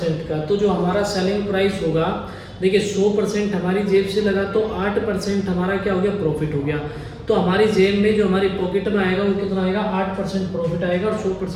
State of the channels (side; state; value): both; identical; correlation 1.00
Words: का। तो जो हमारा सेलिंग प्राइस होगा, देखिए 100% हमारी जेब से लगा तो 8% हमारा क्या हो गया, प्रॉफिट हो गया। तो हमारी जेब में जो हमारी पॉकेट में आएगा वो कितना आएगा, 8% प्रॉफिट आएगा, और